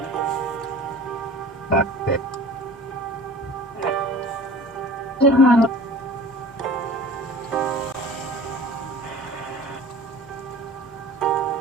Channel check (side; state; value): both; normal; correlation 0.42